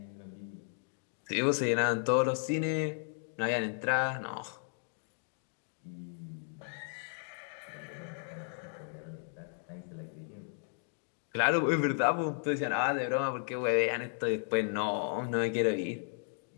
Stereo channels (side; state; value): right; silent; 55 dB below the other